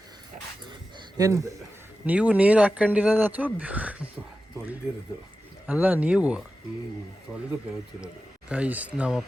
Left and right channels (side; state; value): both; normal; correlation 0.93